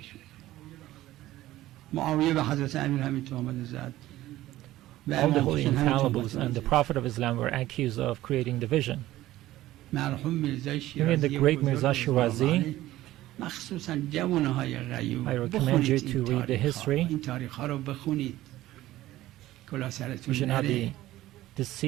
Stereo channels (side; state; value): left; quieter; 15.5 dB